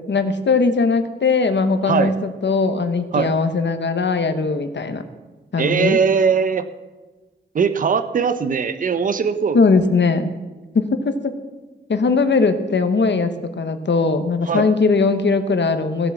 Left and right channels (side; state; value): both; normal; correlation 0.42